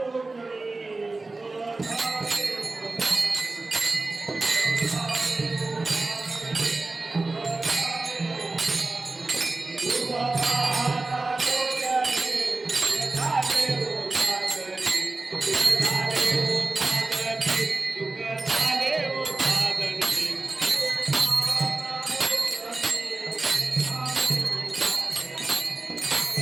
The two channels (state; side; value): quieter; left; 3.4 dB